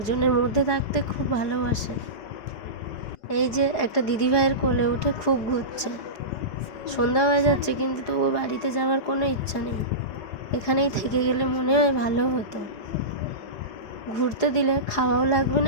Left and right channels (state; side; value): late; right; 4.8 ms